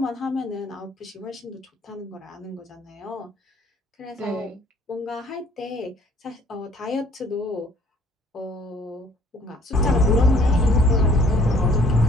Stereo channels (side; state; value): both; normal; correlation 0.58